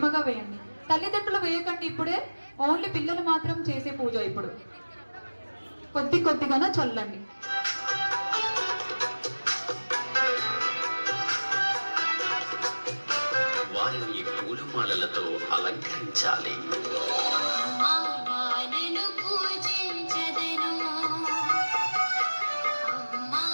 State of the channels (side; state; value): both; inverted; correlation -1.00